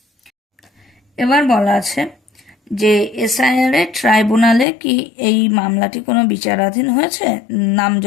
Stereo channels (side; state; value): right; drops out; at 4.7 s